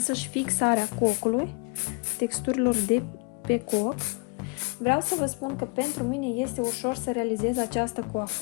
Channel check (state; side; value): quieter; right; 31.6 dB